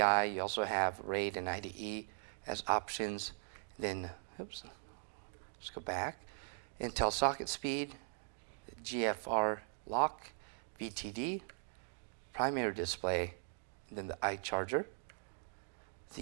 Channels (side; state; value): left; silent; digital silence